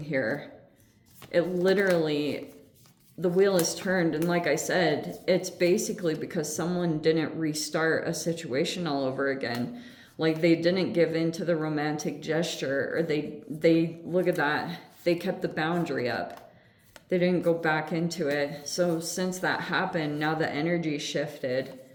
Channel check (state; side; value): identical; both; correlation 1.00